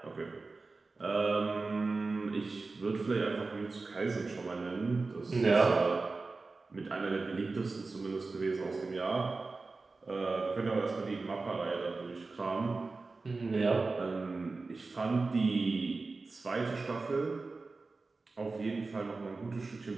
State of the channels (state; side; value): quieter; left; 3.8 dB